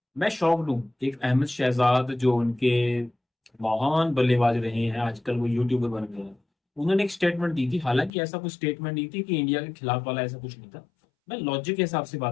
मैं शॉक्ड हूँ। एक अहमद शहजाद जो उनके महान बल्लेबाज रहे हैं, आजकल वो यूट्यूबर बन गए हैं, उन्होंने एक स्टेटमेंट दी थी। हालांकि ऐसा कुछ स्टेटमेंट नहीं थी कि इंडिया के खिलाफ वाला, ऐसा कुछ नहीं था। मैं लॉजिक के हिसाब से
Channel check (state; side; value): drops out; right; at 8.1 s